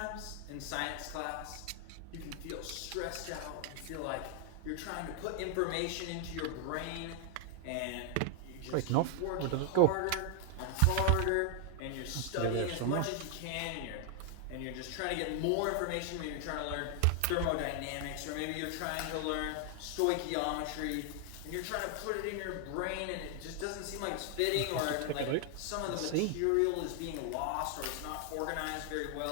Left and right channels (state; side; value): different; both; correlation 0.00